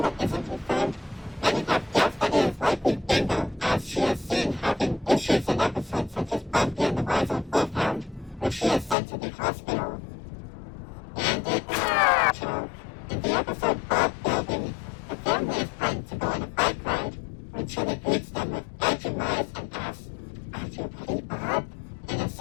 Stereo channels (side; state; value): right; drops out; at 9.0 s